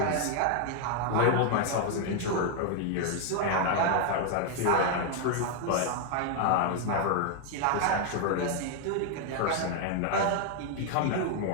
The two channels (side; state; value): both; different; correlation 0.00